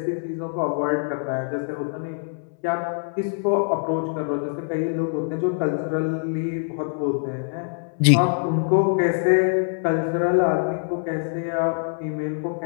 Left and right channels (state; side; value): silent; right; 63 dB below the other